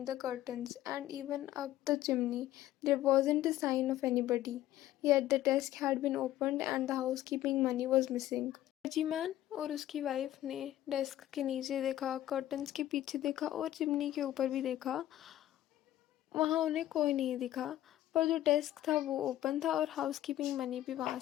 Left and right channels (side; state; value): right; quieter; 13.7 dB